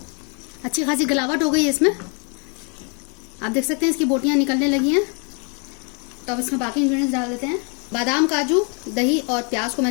अच्छी खासी गलावट हो गई है इसमें, आप देख सकते हैं इसकी बोटियां निकलने लगी हैं। तो अब इसमें बाकी इंग्रेडिएंट्स डाल देते हैं। बादाम, काजू, दही और प्याज को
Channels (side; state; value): right; quieter; 37.1 dB